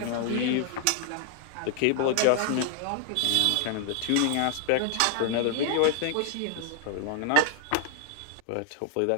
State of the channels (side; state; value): both; different; correlation 0.00